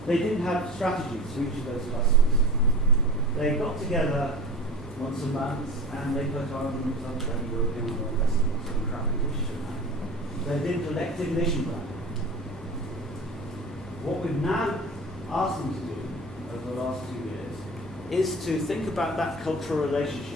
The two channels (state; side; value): normal; both; correlation 0.34